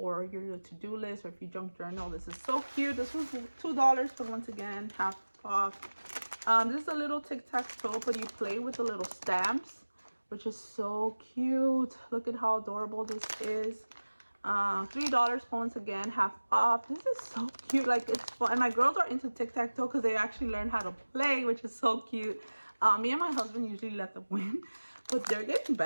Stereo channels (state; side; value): inverted; both; correlation -1.00